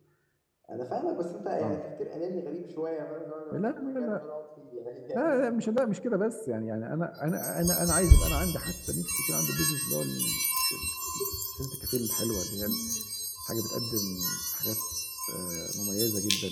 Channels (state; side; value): identical; both; correlation 1.00